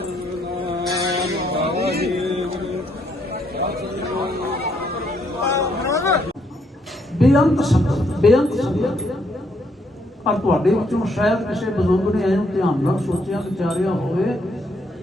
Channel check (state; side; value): normal; both; correlation 0.72